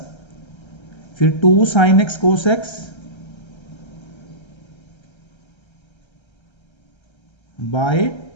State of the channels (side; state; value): right; late; 1.3 ms